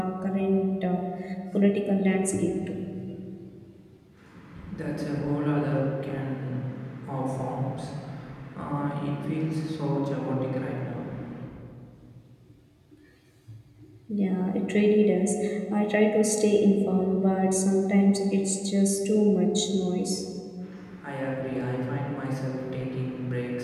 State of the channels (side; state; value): both; identical; correlation 1.00